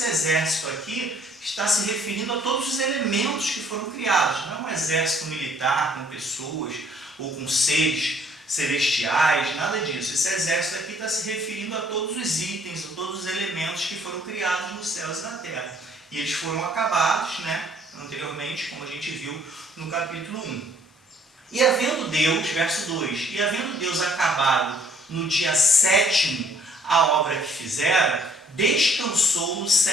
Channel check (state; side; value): normal; both; correlation 0.61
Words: exército aqui está se referindo a todos os elementos que foram criados. Não é um exército militar com pessoas ou com seres celestiais, nada disso. Esse exército aqui está se referindo a todos os itens, a todos os elementos que foram criados nos céus e na terra. E eles foram acabados, anteriormente, como a gente viu no capítulo 1. E havendo Deus, verso 2, e havendo Deus acabado no dia 7º a obra que fizera, descansou no